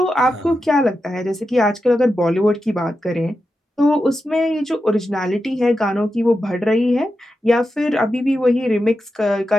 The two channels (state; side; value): normal; both; correlation 0.89